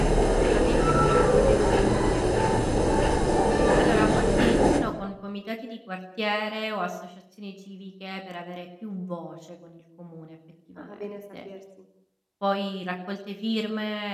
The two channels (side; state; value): both; identical; correlation 1.00